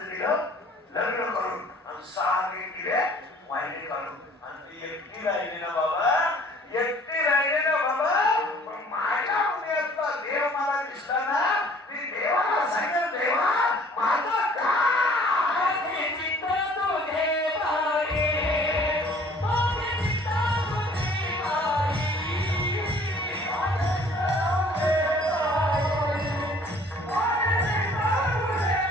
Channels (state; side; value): normal; both; correlation 0.54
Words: दिलं लग्न करून आणि 6 दिले वाहिनी काढून आणि ती एकटी राहिली ना बाबा एकटी राहिली ना बाबा. पण माझ्या हृदयातला देव मला दिसला ना मी देवाला सांगेल देवा माझं काय